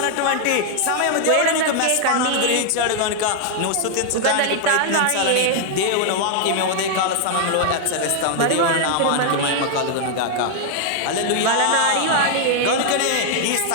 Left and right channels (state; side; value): different; both; correlation 0.00